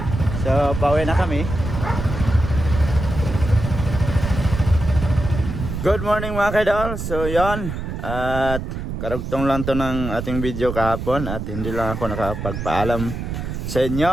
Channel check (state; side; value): noise; right; rumble, 5 dB below the sound